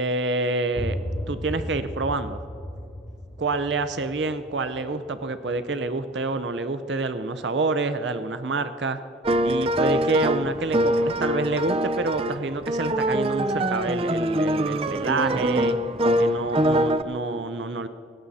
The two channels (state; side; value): normal; both; correlation 0.44